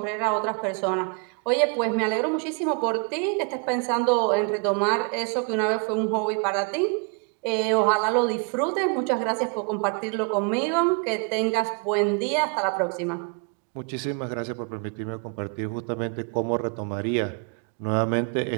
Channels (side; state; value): left; quieter; 36.7 dB